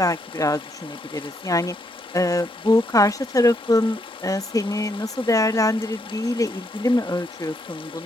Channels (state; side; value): normal; both; correlation 0.75